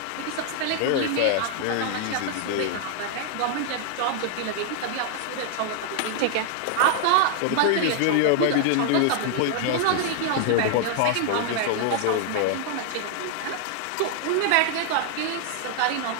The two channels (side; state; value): both; different; correlation 0.00